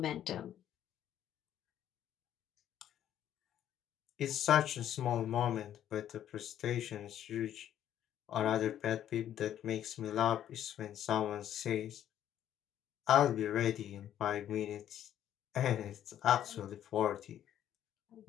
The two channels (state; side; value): quieter; right; 11.0 dB